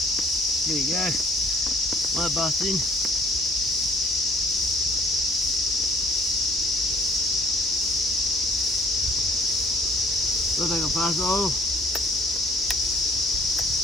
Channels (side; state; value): both; normal; correlation 0.57